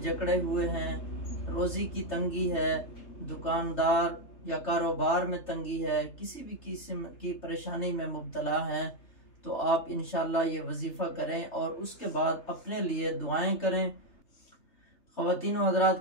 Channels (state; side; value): late; right; 3.3 ms